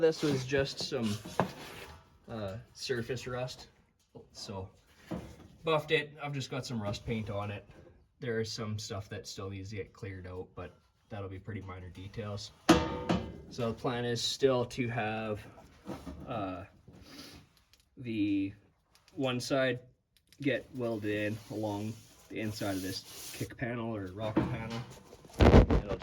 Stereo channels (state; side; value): identical; both; correlation 1.00